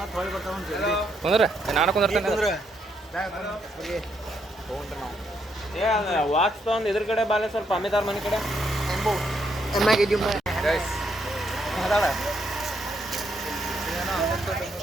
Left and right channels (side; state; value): both; normal; correlation 0.75